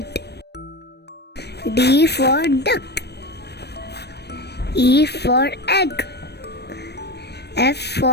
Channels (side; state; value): right; late; 0.48 ms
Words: D for duck, E for egg, F